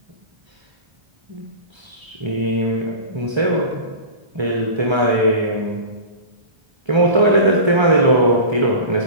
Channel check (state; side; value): late; left; 1.3 ms